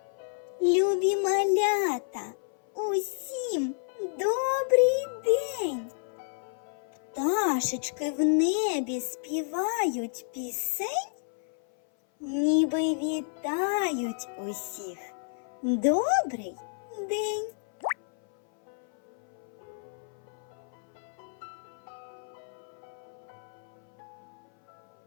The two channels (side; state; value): right; silent; 58 dB below the other